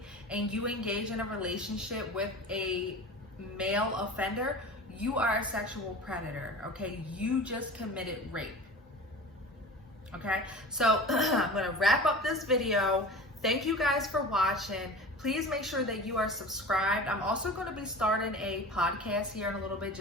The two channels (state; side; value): normal; both; correlation 0.37